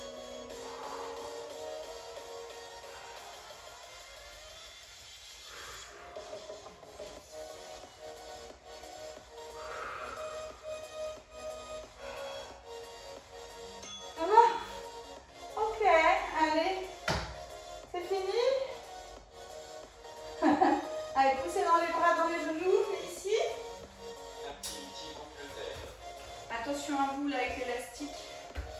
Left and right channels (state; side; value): identical; both; correlation 1.00